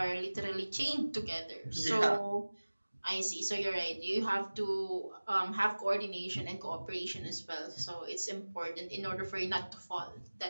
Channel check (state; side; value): inverted; both; correlation -1.00